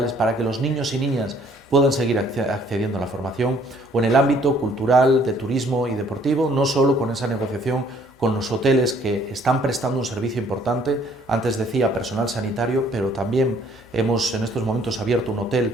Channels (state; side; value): normal; both; correlation 0.61